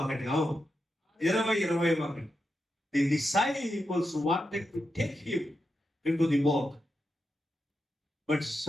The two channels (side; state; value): both; normal; correlation 0.87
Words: అవును, 21. The disciples wanted to take him into the boat, but